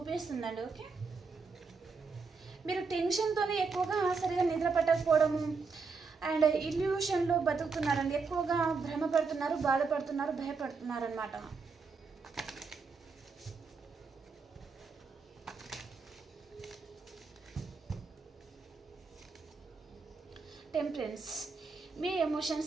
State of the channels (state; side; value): quieter; left; 4.7 dB